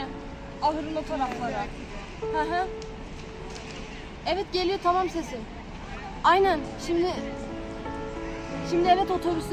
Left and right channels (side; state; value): both; identical; correlation 1.00